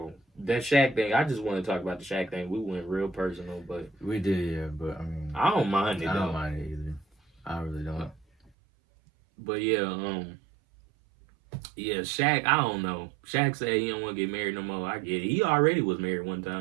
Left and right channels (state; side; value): drops out; left; at 8.5 s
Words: That Shaq thing, I just want to talk about the Shaq thing. We went real personal, but We did, yeah, but I mean, I don't mind it I though. don't mind it either. I really don't. But yeah, Shaq, I don't know. Shaq said he don't want to get married no more. I get it. He already was married one